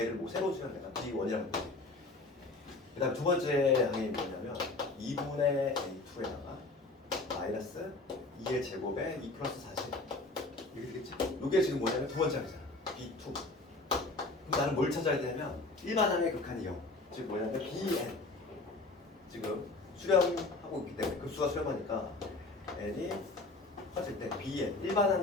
뭐 새로 쓰면 내가 B1이라고 보지. 그 다음 두 번째 항이 뭐냐면 2분의 A2에다가 마이너스 2의 제곱에 2 플러스 40 이렇게 되겠지. 요게 지금 뭐냐면 두 번째 항이잖아. B2. 그럼 나는 뭘 찾아야 되냐면 일반항의 극한이 0. 즉 뭐냐면 BN. 지금 수렴하고 있기 때문에 급수가 수렴하니까 n이 커질 때 bn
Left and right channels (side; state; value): right; quieter; 3.2 dB